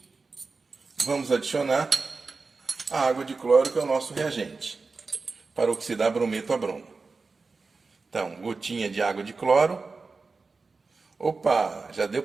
vamos adicionar a água de cloro, que é o nosso reagente, para oxidar brometo a bromo. Então, gotinha de água de cloro. Opa, já deu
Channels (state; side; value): quieter; left; 4.2 dB